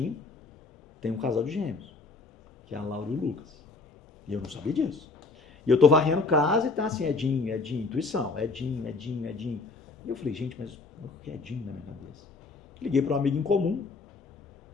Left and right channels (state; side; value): quieter; right; 4.0 dB